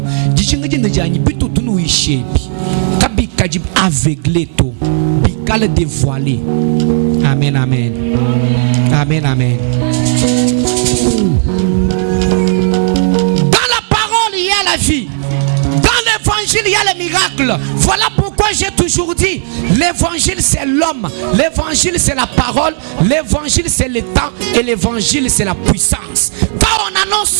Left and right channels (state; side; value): silent; left; digital silence